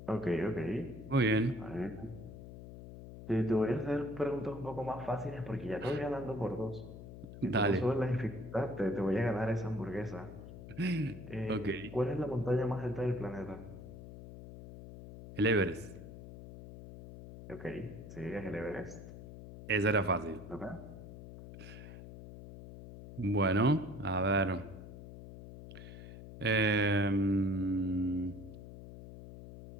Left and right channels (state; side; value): noise; left; hum, 13 dB below the sound